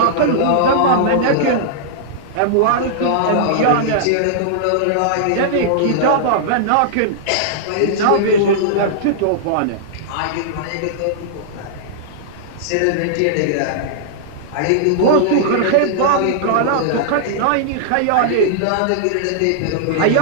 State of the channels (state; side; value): different; both; correlation -0.02